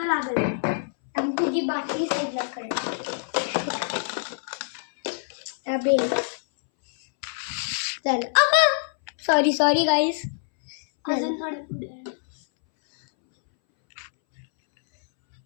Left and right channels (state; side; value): silent; right; 62 dB below the other